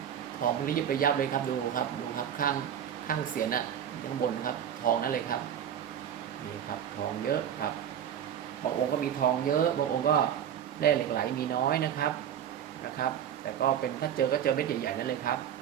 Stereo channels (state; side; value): quieter; left; 9.5 dB